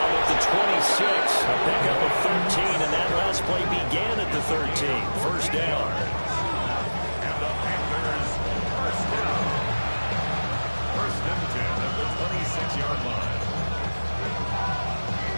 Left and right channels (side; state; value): both; inverted; correlation -1.00